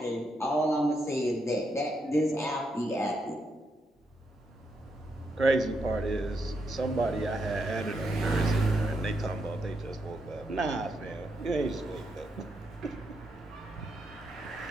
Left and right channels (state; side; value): normal; both; correlation 0.81